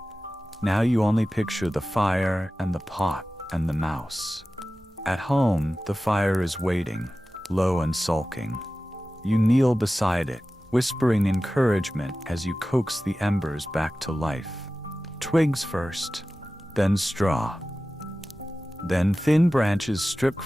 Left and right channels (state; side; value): normal; both; correlation 0.95